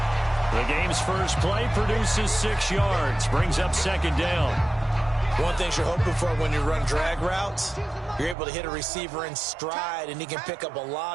The game's first play produces 6 yards. Brings up second down. One thing you're hoping for when you run drag routes, you're able to hit a receiver in stride, and he can pick up a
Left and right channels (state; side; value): drops out; left; at 8.3 s